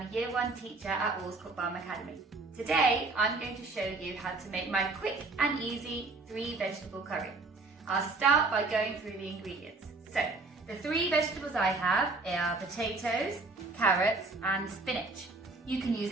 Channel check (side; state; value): left; quieter; 3.5 dB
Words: a Year 1 teacher at Allscourt Farm Academy. Today I'm going to show you how to make my quick and easy 3 vegetable curry. I'll start by going through the ingredients. So, the 3 vegetables I have are potatoes, carrots and spinach. You can